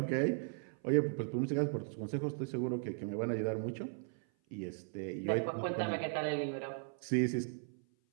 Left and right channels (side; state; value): left; silent; 53 dB below the other